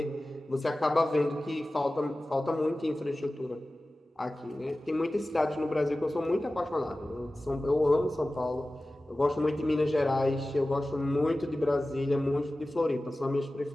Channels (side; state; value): both; normal; correlation 0.96